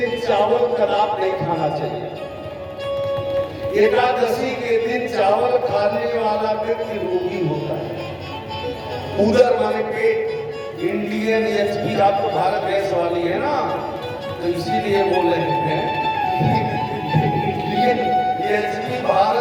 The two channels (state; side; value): identical; both; correlation 1.00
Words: चावल कदाप नहीं खाना चाहिए। एकादशी के दिन चावल खाने वाला व्यक्ति रोगी होता है। उधर माने पेट। इंडियन एचपी, आप तो भारत गैस वाली है ना, तो इसीलिए बोल रहे हैं इंडियन एचपी